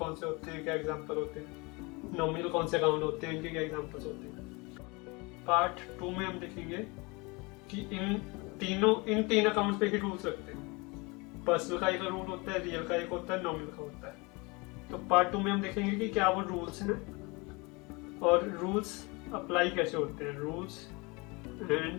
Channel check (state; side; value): quieter; right; 27.0 dB